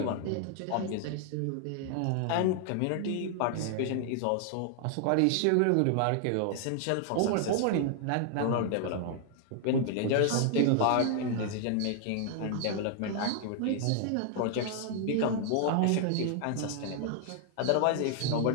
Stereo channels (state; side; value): different; both; correlation 0.00